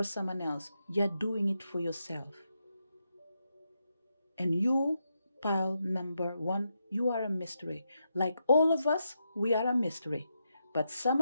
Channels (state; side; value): inverted; both; correlation -0.83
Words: someone else, you're doing it for yourself. And you, pile number one, you are a mystery. Like all of us, we are a mystery, but some